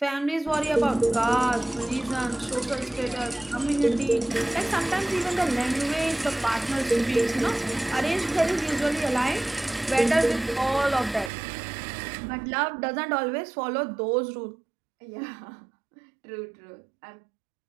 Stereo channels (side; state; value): left; drops out; at 11.3 s